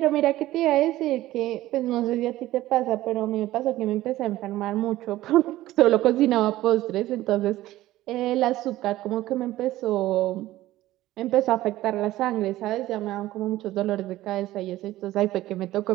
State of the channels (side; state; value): left; quieter; 15.7 dB